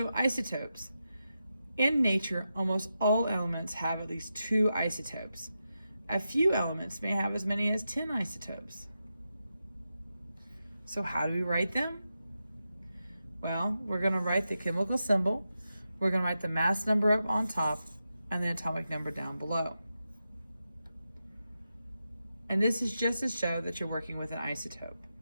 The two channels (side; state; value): both; inverted; correlation -0.89